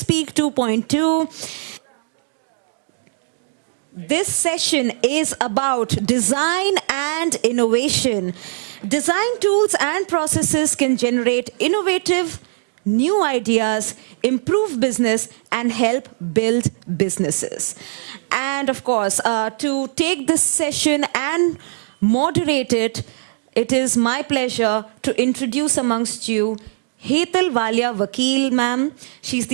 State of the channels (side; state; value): left; silent; digital silence